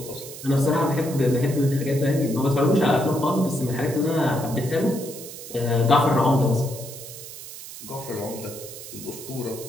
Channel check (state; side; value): noise; right; hiss, 13 dB below the sound